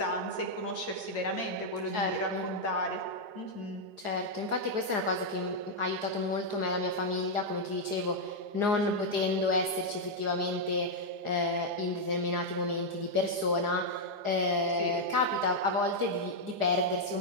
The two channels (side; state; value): left; late; 4.8 ms